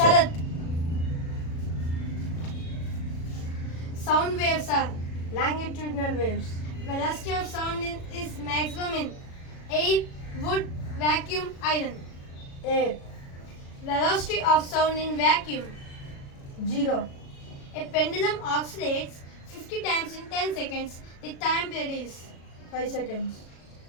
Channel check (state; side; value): late; right; 37 ms